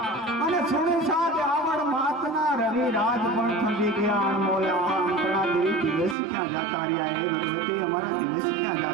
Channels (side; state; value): left; drops out; at 6.2 s